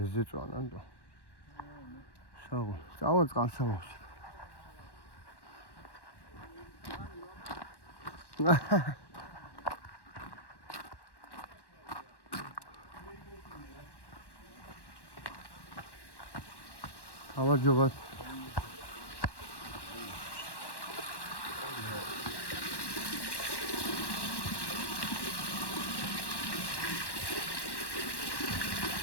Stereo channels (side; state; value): right; late; 1.1 ms